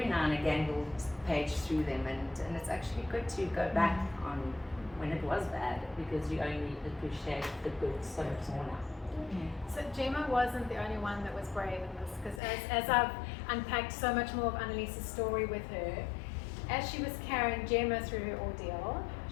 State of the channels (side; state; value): right; drops out; at 12.4 s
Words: now and again we'll page through them. And it's actually good to go back on when it was bad, because you only appreciate the good so much more now. So Gemma wasn't the only one that was brave in this, because as I've unpacked so much more of Annalise's story with her, as she was carrying Gemma through her ordeal,